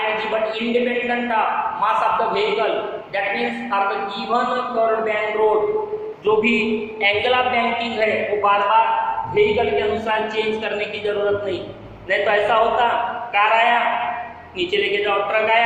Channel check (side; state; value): both; identical; correlation 1.00